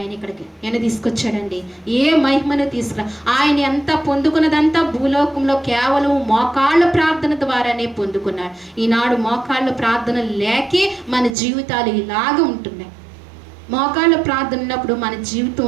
ఇక్కడికి. ఆయన తీసుకొచ్చాడండి. ఏ మహిమను తీసుకురా. ఆయన ఎంత పొందుకున్నదంతా భూలోకంలో కేవలం మోకాళ్ళ ప్రార్థన ద్వారానే పొందుకున్నాడు. ఈనాడు మోకాళ్ళ ప్రార్థన లేకే మన జీవితాలు ఇలాగ ఉంటున్నాయి. మోకాళ్ళ ప్రార్థన ఉన్నప్పుడు మన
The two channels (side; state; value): left; drops out; at 11.4 s